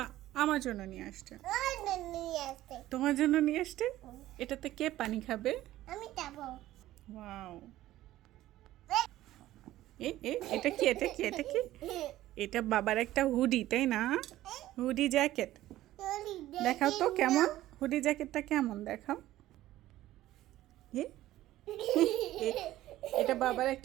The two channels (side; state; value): left; quieter; 14.9 dB